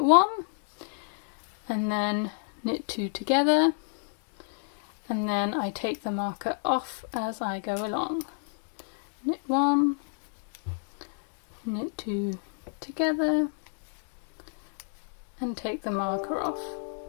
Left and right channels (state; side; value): silent; right; digital silence